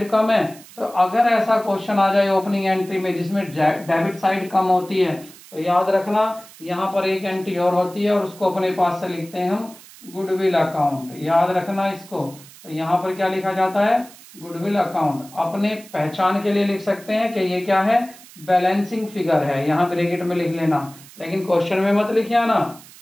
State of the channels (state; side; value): noise; right; hiss, 21 dB below the sound